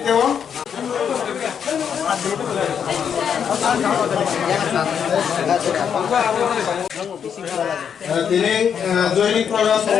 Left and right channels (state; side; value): quieter; right; 7.7 dB